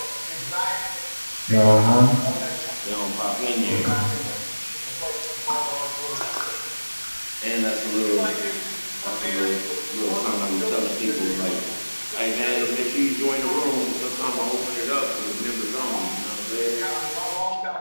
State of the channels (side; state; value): both; inverted; correlation -1.00